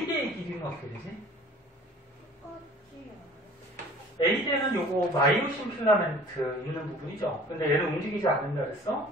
길이는 어떻게 되지? A대는 요거 마이오신 필라멘트 있는 부분이죠. 근데 얘는 움직이지 않는다 그랬어?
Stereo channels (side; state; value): both; normal; correlation 0.48